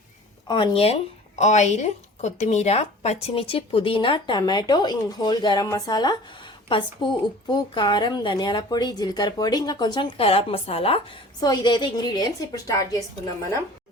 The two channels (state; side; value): normal; both; correlation 0.44